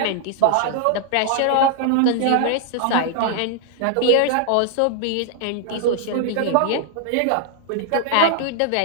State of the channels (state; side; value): different; both; correlation 0.00